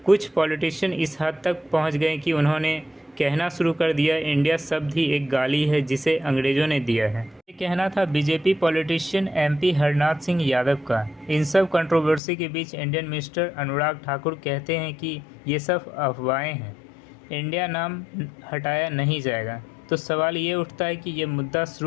कुछ पॉलिटिशियन इस हद तक पहुंच गए कि उन्होंने कहना शुरू कर दिया इंडिया शब्द ही एक गाली है जिसे अंग्रेज़ों ने दिया है। ये कहना था BJP politician MP Harnath Singh Yadav का। इन सब कंट्रोवर्सी के बीच इंडियन मिनिस्टर अनुराग ठाकुर कहते हैं कि ये सब अफवाहें हैं, इंडिया नाम हटाया नहीं जाएगा। तो सवाल ये उठता है कि ये मुद्दा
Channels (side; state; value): right; drops out; at 12.2 s